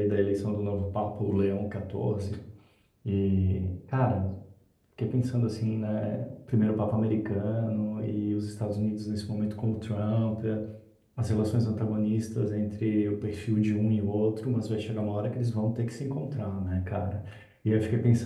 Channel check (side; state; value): both; identical; correlation 1.00